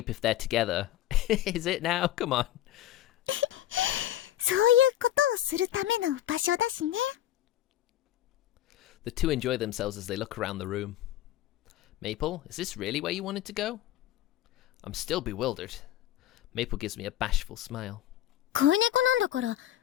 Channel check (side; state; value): right; quieter; 13.0 dB